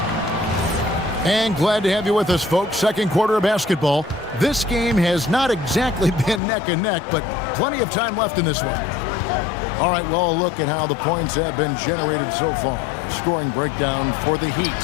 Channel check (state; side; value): drops out; right; at 6.4 s